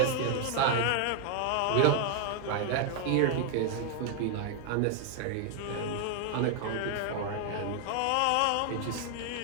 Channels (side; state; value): both; different; correlation 0.00